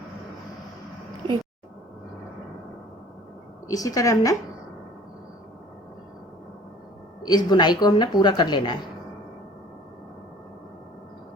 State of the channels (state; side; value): normal; both; correlation 0.50